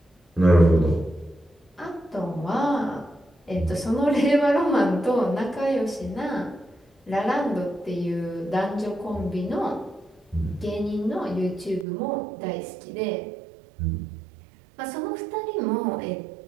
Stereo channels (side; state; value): left; drops out; at 11.9 s